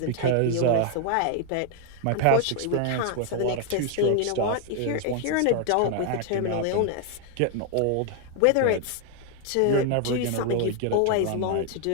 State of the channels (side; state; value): both; different; correlation 0.00